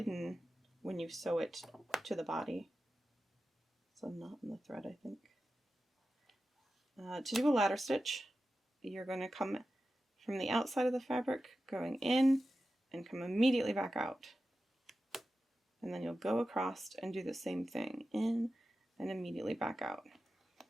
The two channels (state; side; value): normal; both; correlation 0.93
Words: when you sew it to the body. So not in the thread, I think. To do a ladder stitch, you're going to come from the outside of the fabric, going in, and come immediately back out. And then you'll go across and do the same thing, in and immediately back out.